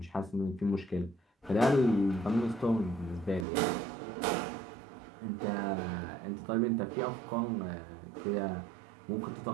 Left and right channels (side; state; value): left; drops out; at 3.5 s